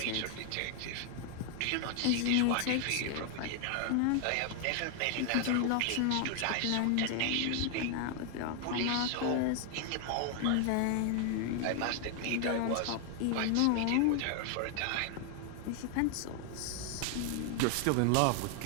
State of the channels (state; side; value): different; both; correlation 0.00